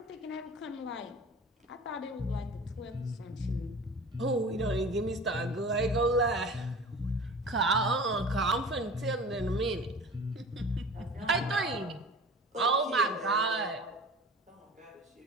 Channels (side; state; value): both; normal; correlation 0.39